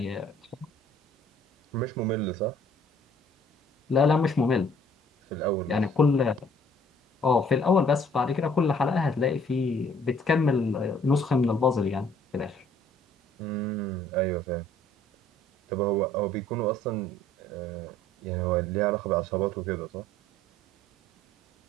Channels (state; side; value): normal; both; correlation 0.58